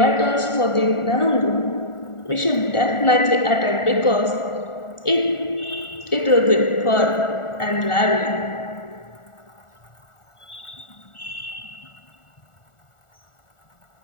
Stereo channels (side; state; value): right; late; 1.4 ms